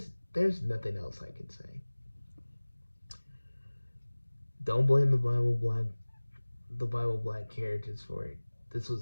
nothing else I can say. Don't blame the Bible Black characters for it. This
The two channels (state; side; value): inverted; both; correlation -1.00